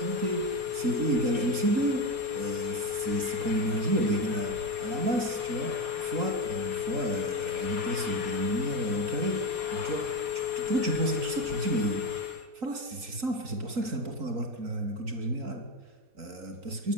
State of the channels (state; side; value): late; left; 3.8 ms